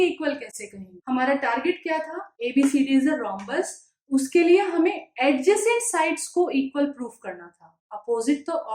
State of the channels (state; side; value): identical; both; correlation 1.00